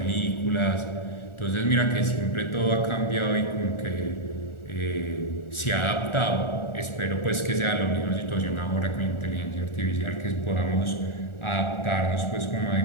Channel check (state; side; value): late; right; 1.4 ms